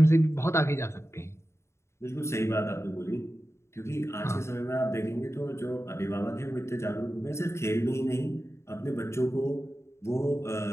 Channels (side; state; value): right; late; 0.13 ms